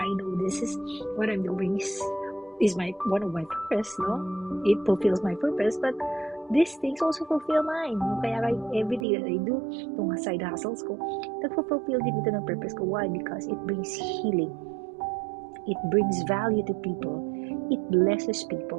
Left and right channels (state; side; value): drops out; left; at 9.1 s